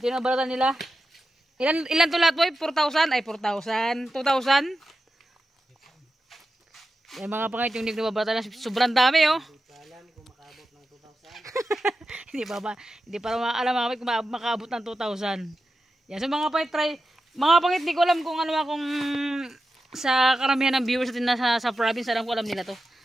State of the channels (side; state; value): both; normal; correlation 0.91